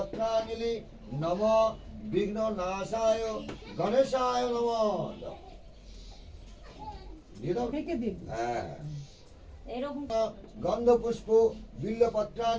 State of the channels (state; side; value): identical; both; correlation 1.00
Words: নম বিঘ্ন নাশায় গণেশায় নম। গন্ধপুষ্প